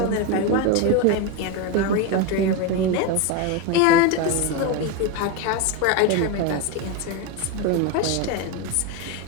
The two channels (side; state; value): both; different; correlation 0.04